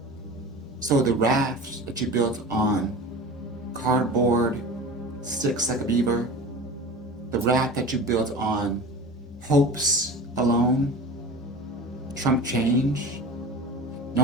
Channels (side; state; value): both; normal; correlation 0.35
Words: So the raft that you built on cardboard, sticks like a beaver, the raft that you built on hopes alone, Trump change,